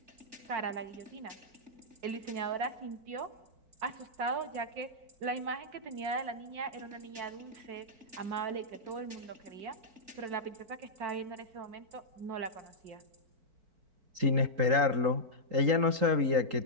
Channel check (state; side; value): late; left; 3.8 ms